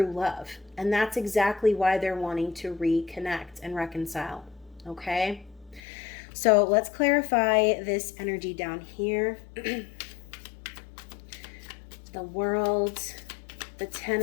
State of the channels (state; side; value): drops out; right; at 5.8 s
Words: love. And that's exactly why they're wanting to reconnect and reconcile. Okay. So let's clarify this energy down here. The World, the Ten